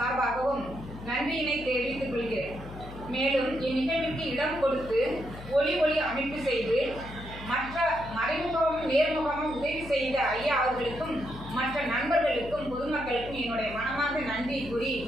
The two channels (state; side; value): noise; left; hum, 14 dB below the sound